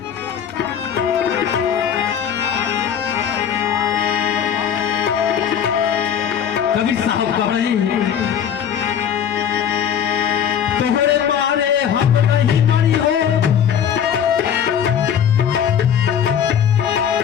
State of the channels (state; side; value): quieter; right; 8.6 dB